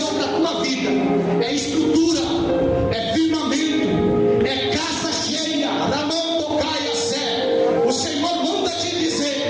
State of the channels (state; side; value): identical; both; correlation 1.00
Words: para a tua vida é estrutura, é firmamento, é casa cheia. O Senhor manda te dizer